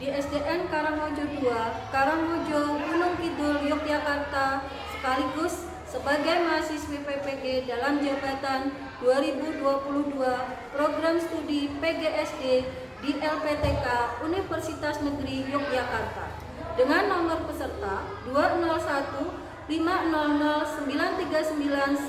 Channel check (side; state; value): both; identical; correlation 1.00